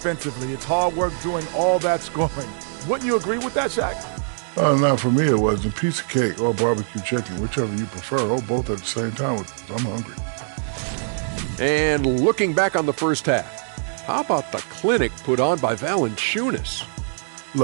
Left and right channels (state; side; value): silent; left; digital silence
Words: It's hard work doing all that scoring. Wouldn't you agree with that, Shaq? Not for me. It was a piece of cake or barbecue chicken, whichever you prefer, or both at the same time. I'm hungry. And looking back on the first half, how about the clinic put on by Valanciunas?